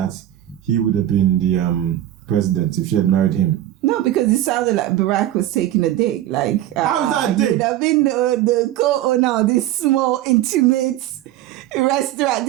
he would have been the president if she had married him. No, because it sounded like Barack was taking a dig. Like, how is that a dig? He would have been the co-owner of this small, intimate restaurant,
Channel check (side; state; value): left; quieter; 13.2 dB